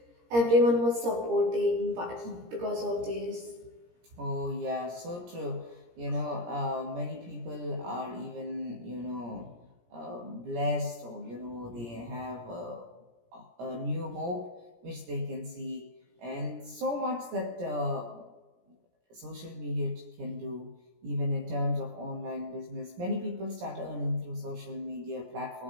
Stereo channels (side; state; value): left; late; 17 ms